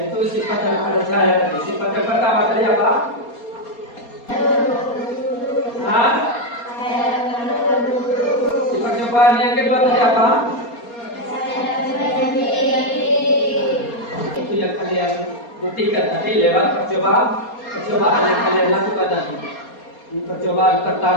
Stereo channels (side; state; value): right; late; 4.3 ms